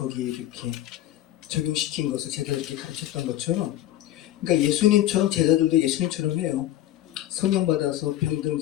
이렇게 적용시킨 것을 제자들에게 가르쳤던 것처럼, 그러니까 예수님처럼 제자들도 예수님처럼 해요. 성령 받아서 병든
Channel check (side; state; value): right; quieter; 13.6 dB